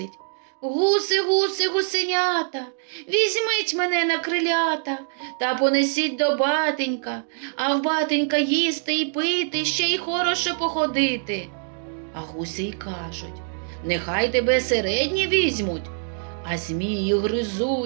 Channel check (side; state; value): left; silent; digital silence